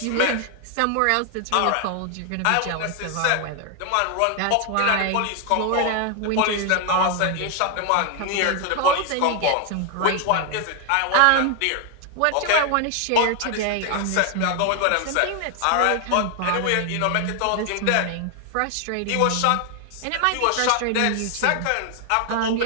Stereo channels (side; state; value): both; different; correlation 0.00